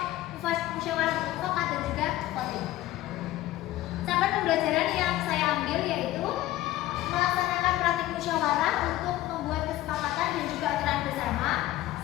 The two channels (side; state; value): right; quieter; 15.5 dB